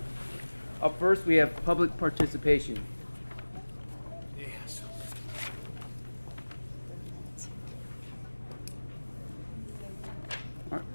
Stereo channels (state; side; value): inverted; both; correlation -1.00